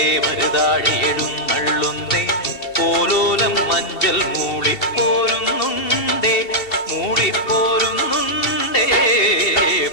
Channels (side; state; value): right; late; 2.7 ms